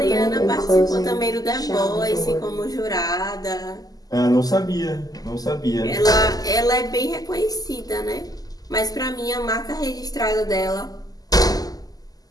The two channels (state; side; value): late; right; 0.18 ms